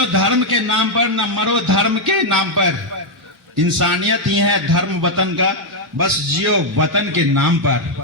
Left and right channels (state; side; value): normal; both; correlation -0.01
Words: धर्म के नाम पर, ना मरो धर्म के नाम पर। इंसानियत ही है धर्म वतन का, बस जियो वतन के नाम पर।